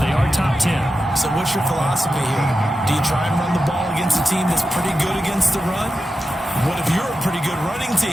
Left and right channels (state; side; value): normal; both; correlation 0.91